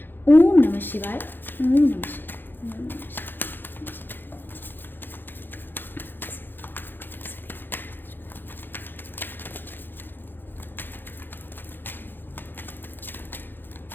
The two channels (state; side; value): late; right; 0.097 ms